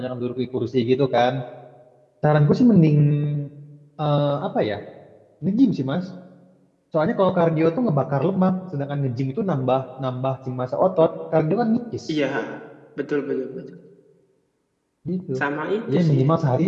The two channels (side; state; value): both; identical; correlation 1.00